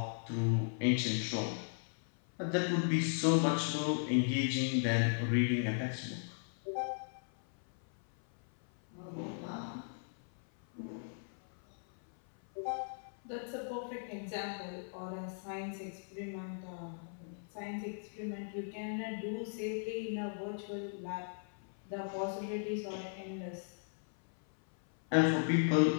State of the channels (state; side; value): silent; right; 53 dB below the other